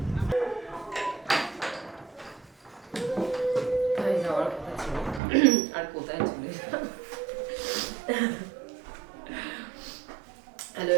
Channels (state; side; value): drops out; left; at 5.2 s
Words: যাওয়ার কথা ছিল আর কোথায় চলে hello